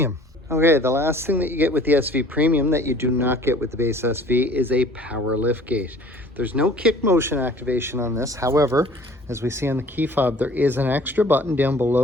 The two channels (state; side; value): normal; both; correlation 0.50